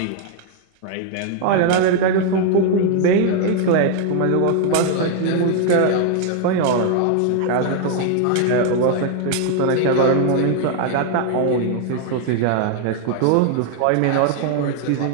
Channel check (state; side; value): different; both; correlation 0.00